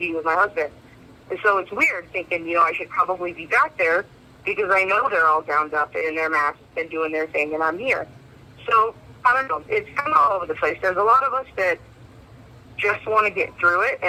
with my husband. And so it's weird thinking, I should probably be back there because I know they're all gowned up in their masks and doing their thing, and I'm here. So, I don't know. It's kind of all over the place. There's a lot of us that just want to get through it,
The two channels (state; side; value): identical; both; correlation 1.00